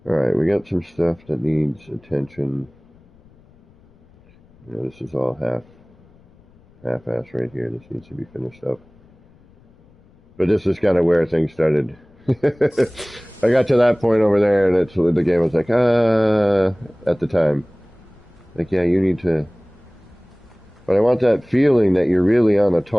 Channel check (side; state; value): left; noise; rumble, 29 dB below the sound